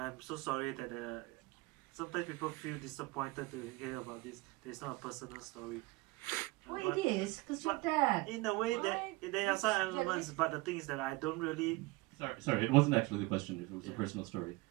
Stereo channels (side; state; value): left; quieter; 22.5 dB